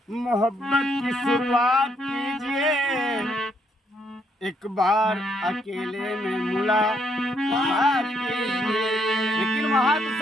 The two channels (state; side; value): normal; both; correlation 0.72